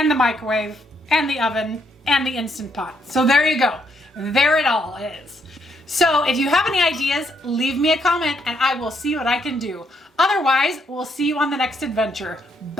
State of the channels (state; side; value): normal; both; correlation 0.74